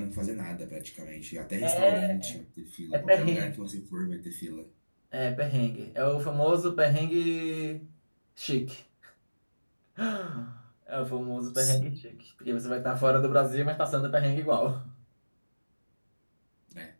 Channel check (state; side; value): inverted; both; correlation -1.00